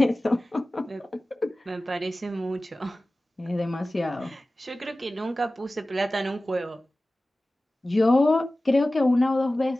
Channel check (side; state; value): both; normal; correlation 0.96